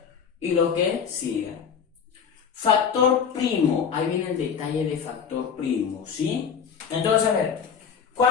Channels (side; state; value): right; quieter; 7.0 dB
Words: y lo que siga. Factor primo, ahí viene el detalle de factor primo, ¿sí? Entonces, a ver,